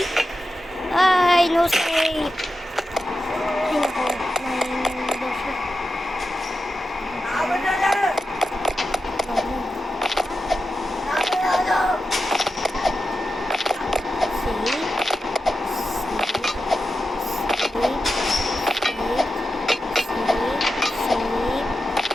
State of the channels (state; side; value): normal; both; correlation 0.90